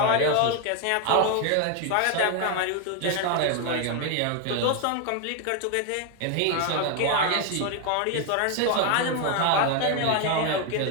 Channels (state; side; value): different; both; correlation 0.01